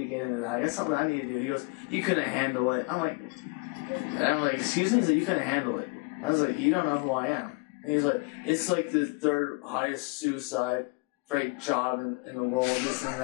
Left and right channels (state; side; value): quieter; right; 29.8 dB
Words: get into that. I got something I need to do. He goes, you couldn't handle it. I'm like, excuse me? He's like, you couldn't handle it. I was like, you don't know who I am. And he's like, it's like the third highest suicide rate job in the world, this and